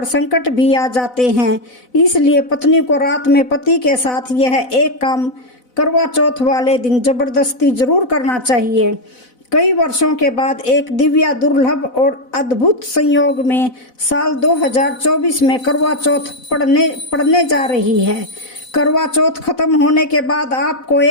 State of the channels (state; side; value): late; right; 4.0 ms